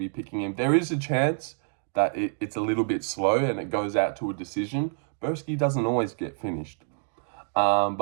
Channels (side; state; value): left; silent; 60 dB below the other